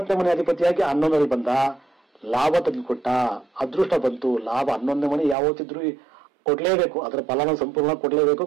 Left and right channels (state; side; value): drops out; left; at 5.4 s